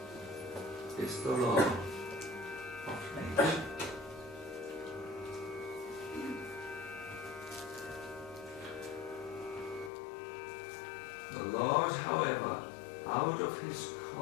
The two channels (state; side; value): drops out; right; at 9.9 s